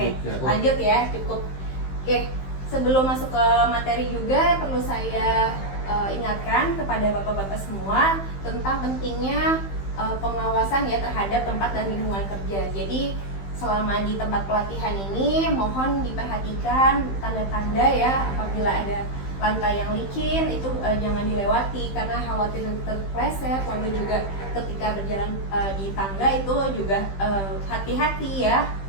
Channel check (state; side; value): late; right; 15 ms